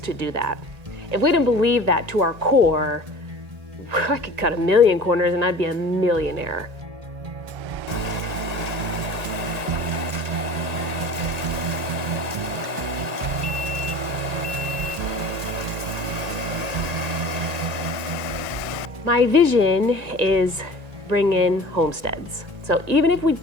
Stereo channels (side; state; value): left; late; 1.8 ms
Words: do that. If we didn't believe that to our core, I could cut 1,000,000 corners and I'd be a millionaire. My vision is bring in homesteads. So even if we